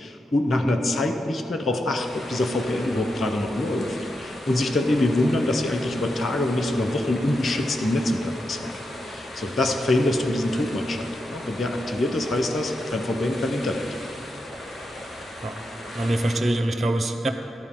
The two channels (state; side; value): normal; both; correlation 0.86